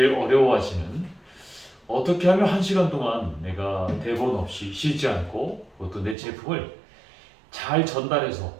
어려워하시는 어떻게 하면 1시간 동안 내가 대본 없이 쉬지 않고 또 내 제품을 잘 전달해서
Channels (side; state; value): left; drops out; at 6.2 s